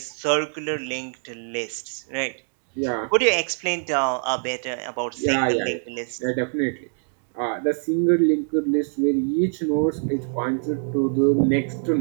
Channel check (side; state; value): left; silent; 55 dB below the other